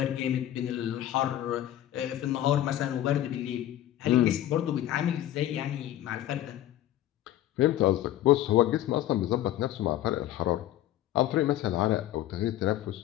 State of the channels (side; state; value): right; quieter; 13.0 dB